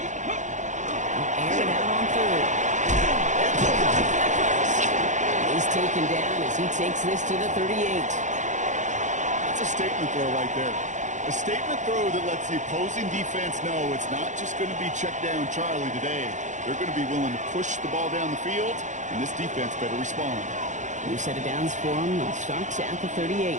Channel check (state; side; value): late; left; 0.35 ms